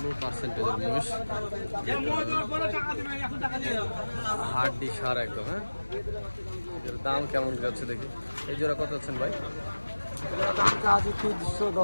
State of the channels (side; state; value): both; inverted; correlation -1.00